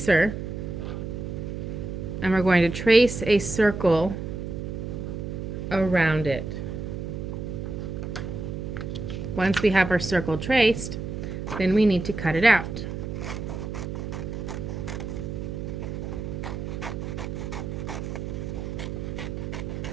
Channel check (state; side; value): noise; right; hum, 5 dB below the sound